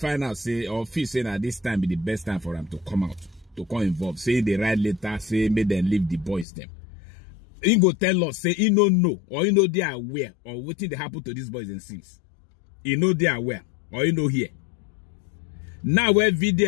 say, or feel saying that this time be the best time for them to come out, to come involved. Say they write letter, say make them leave the boys them. He go tell us, say he no know, or he know they are aware, or what thing they happen to these boys and since. He know they are aware, or he know here. Now where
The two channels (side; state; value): right; drops out; at 6.5 s